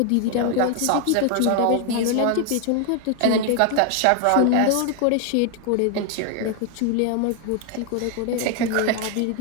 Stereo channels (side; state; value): both; different; correlation 0.01